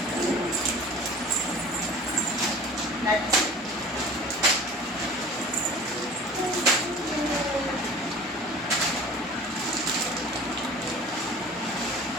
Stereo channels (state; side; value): normal; both; correlation 0.42